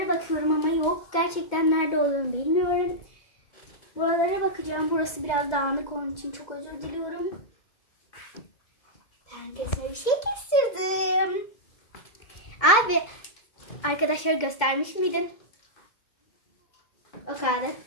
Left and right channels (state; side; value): late; right; 2.2 ms